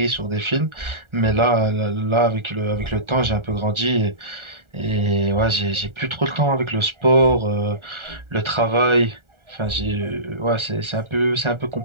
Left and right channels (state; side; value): late; left; 1.4 ms